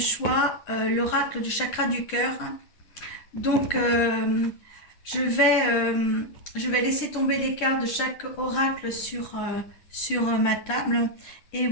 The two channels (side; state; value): right; late; 9.9 ms